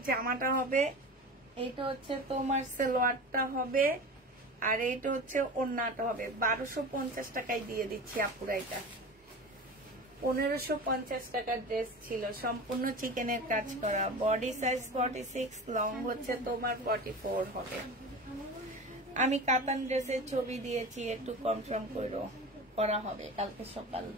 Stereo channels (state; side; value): normal; both; correlation 0.32